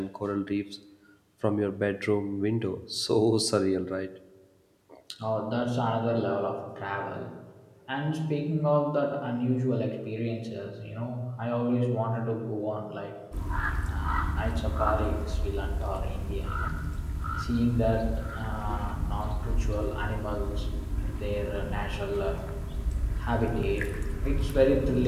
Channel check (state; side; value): identical; both; correlation 1.00